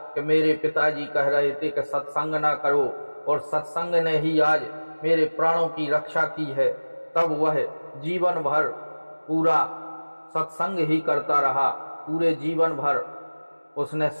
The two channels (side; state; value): both; inverted; correlation -1.00